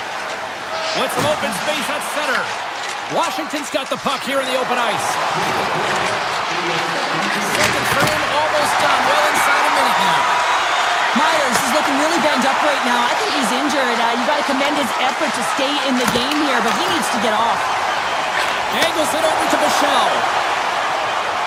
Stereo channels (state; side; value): identical; both; correlation 1.00